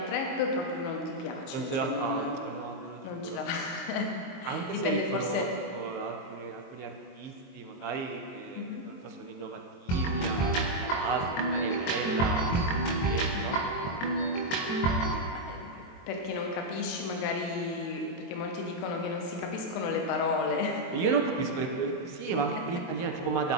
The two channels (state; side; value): late; right; 22 ms